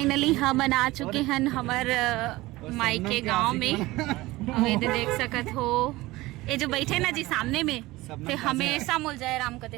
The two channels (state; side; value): quieter; left; 19.4 dB